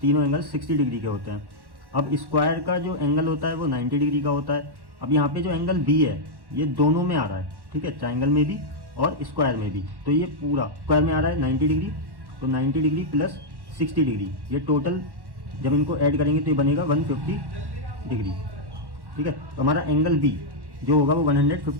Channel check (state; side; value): late; left; 1.1 ms